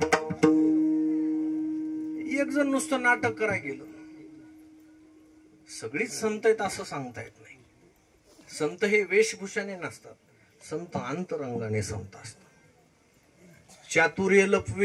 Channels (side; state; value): both; identical; correlation 1.00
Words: एक जण नुसतं नाटक करायला गेलं. सगळीच संत आहेत असं सांगता येत नाही. संत हे वेशभूषाने नसतात, संत अंतरंगाने संत असतात. चातुर्य